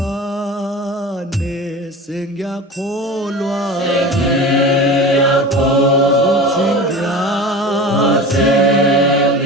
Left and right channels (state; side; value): normal; both; correlation 0.32